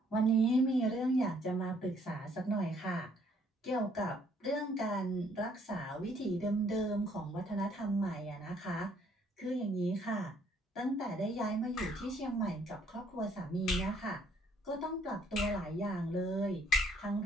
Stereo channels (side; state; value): both; normal; correlation 0.65